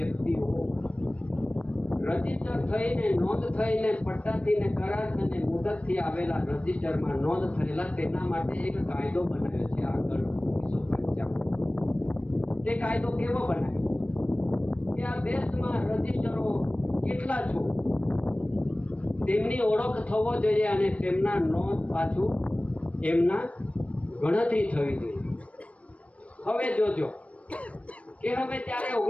રજીસ્ટર થઈને નોંધ થઈને પટ્ટાથી ને કરાર થઈને મુદતથી આવેલા રજીસ્ટરમાં નોંધ થયેલા તેના માટે એક કાયદો બનાવ્યો છે આગળ 1955. તે કાયદો કેવો બનાવ્યો કે આ દેશમાં રજીસ્ટરો કેટલા છો તેમની ઓળખ થવો જોઈએ અને તેમના નોંધ પાછું એમના ગણતરી થવી જોઈએ. હવે જોજો કે હવે ત્યારે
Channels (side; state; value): right; late; 0.064 ms